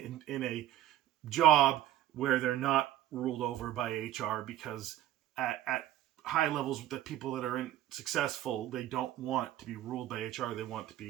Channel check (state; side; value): quieter; left; 13.1 dB